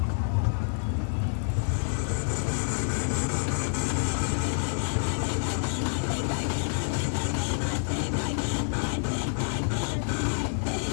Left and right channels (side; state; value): right; silent; 59 dB below the other